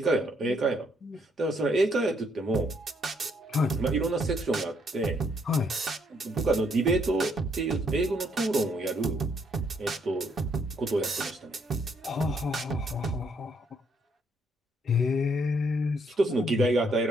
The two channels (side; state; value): both; normal; correlation 0.71